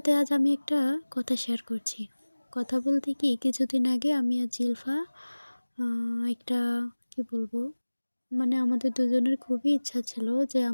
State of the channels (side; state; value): both; inverted; correlation -1.00